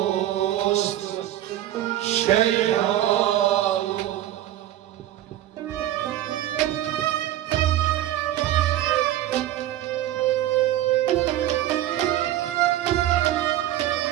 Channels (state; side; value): quieter; left; 13.3 dB